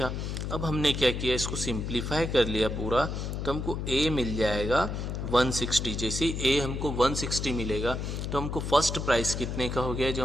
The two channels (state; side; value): noise; left; hum, 4 dB below the sound